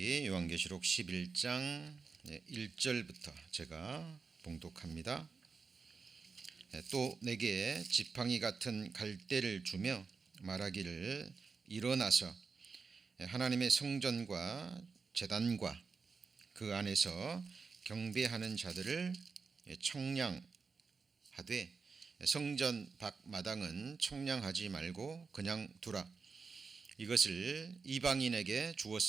요한계시록 11장 1절부터 제가 봉독합니다. 또 내게 지팡이 같은 갈대를 주며 말하기를 일어나서 하나님의 성전과 제단과 그 안에서 경배하는 자들을 청량하되 성전 밖 마당은 청량하지 말고 그냥 두라. 이것을 이방인에게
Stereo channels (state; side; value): quieter; left; 4.9 dB